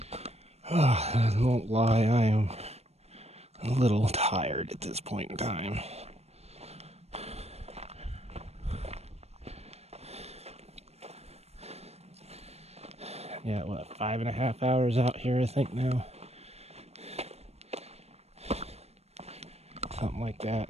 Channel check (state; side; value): late; left; 0.31 ms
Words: I won't lie, I am a little tired at this point in time. Yeah, what, 5.5 hours out here, I think now. Something like that.